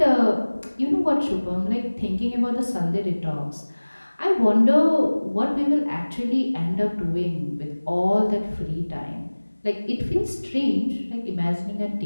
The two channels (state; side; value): inverted; both; correlation -1.00